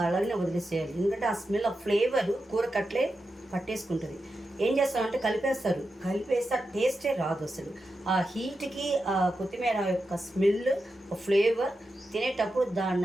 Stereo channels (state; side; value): normal; both; correlation 0.89